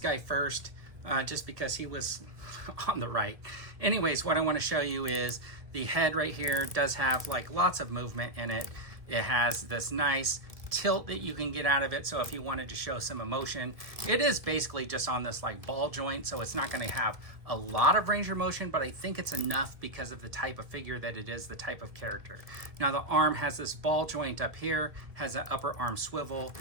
first, just because he was on the right. Anyways, what I want to show you is the head right here does have like lots of movement in it. It has this nice tilt that you can get out of it, so if you wanted to show some emotion, it is basically just on this like ball joint, so it's not going to have a lot of range of motion, but I think it's enough because of the type of figure that it is, the type of character. Now the arm has this ball joint up here, has an upper arm swivel,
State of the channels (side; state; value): left; late; 1.6 ms